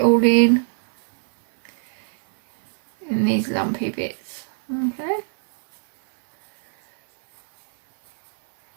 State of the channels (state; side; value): silent; left; 60 dB below the other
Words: all in these lumpy bits. Okay.